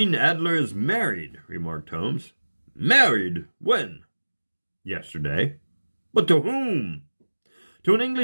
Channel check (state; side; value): inverted; both; correlation -1.00